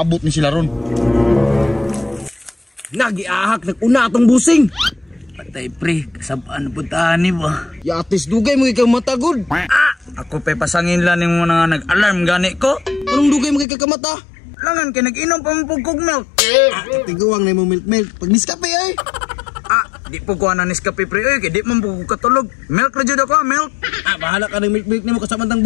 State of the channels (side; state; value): right; drops out; at 13.7 s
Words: ni sila ron. Nagiahak nag-una atong busing. Patay pre, kasabaan puntahan ni ba? Yatis dugay mo ikaw matagod. Ako pa pasangin lang yung mga nag-alarm gani ko. Anong dugay mo kay kakamata? Langan kay nag-inom pa mo kog milk. Tiguang na mo milk. Pag niskape ay. Di po ko na Nescafe pre oy, kay di man po ko katulog. Milk ra jud ako, milk. Bahala ka ng milk nimo kasamantang